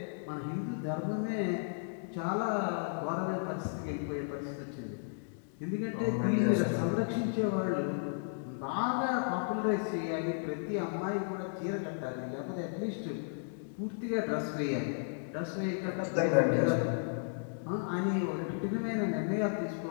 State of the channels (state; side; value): silent; right; digital silence